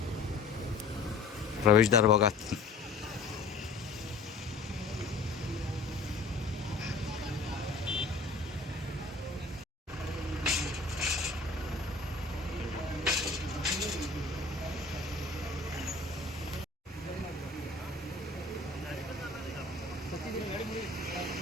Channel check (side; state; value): right; quieter; 3.7 dB